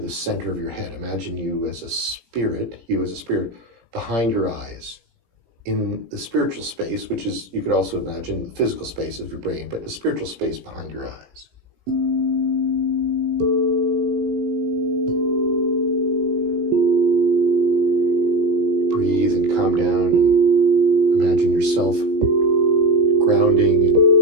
center of your head. Imagine you as a spirit, behind your eyes. In the spiritual space, which is, you could also imagine the physical space of your brain, but the spiritual space behind your eyes. Breathe and calm down and imagine yourself grounding and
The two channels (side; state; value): left; late; 17 ms